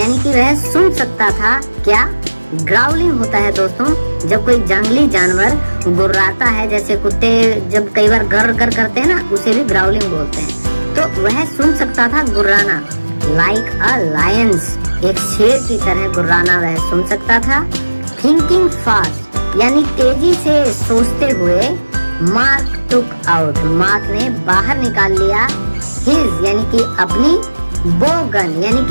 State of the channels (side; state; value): both; inverted; correlation -1.00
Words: कि वह सुन सकता था क्या? ग्राउलिंग होता है दोस्तों जब कोई जंगली जानवर गुर्राता है, जैसे कुत्ते जब कई बार गर गर करते हैं ना, उसे भी ग्राउलिंग बोलते हैं। तो वह सुन सकता था गुर्राना, लाइक अ लायंस, एक शेर की तरह गुर्राना वह सुन सकता था। थिंकिंग फास्ट यानी तेजी से सोचते हुए, मार्क टुक आउट, मार्क ने बाहर निकाल लिया हिज यानी कि अपनी बो गन यानी